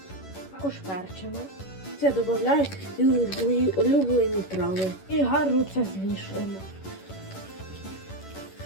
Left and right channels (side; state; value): right; late; 11 ms